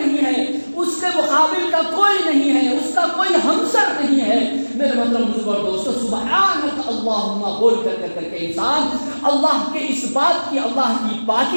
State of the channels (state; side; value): inverted; both; correlation -1.00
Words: ہے, اس کے مقابل کا کوئی نہیں ہے, اس کا کوئی ہمسر نہیں ہے. میرے محترم بزرگوں اور دوستو, سبحانک اللہم بول کر کے انسان اللہ کے اس بات کی, اللہ کی